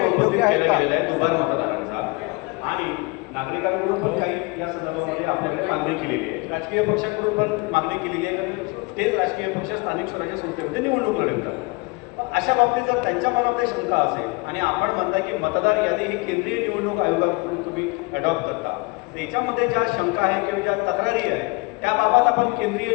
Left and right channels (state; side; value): quieter; right; 26.9 dB